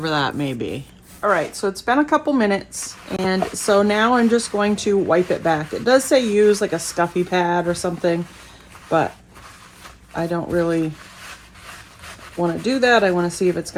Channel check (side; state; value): both; identical; correlation 1.00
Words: that may be. All right, so it's been a couple minutes, and so now I'm just going to wipe it back. It does say use like a scuffy pad or something, but I don't really want to do that. I want to see if it's